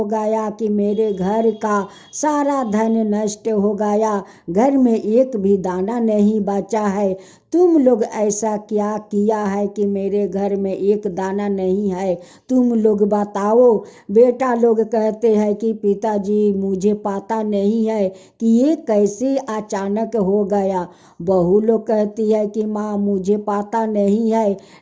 गया कि मेरे घर का सारा धन नष्ट हो गया, घर में एक भी दाना नहीं बचा है। तुम लोग ऐसा क्या किया है कि मेरे घर में एक दाना नहीं है, तुम लोग बताओ। बेटा लोग कहते हैं कि पिताजी मुझे पता नहीं है कि ये कैसे अचानक हो गया। बहू लोग कहती है कि माँ मुझे पता नहीं है,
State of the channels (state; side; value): identical; both; correlation 1.00